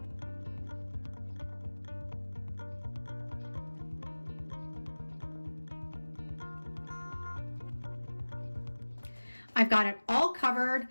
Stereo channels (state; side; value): inverted; both; correlation -1.00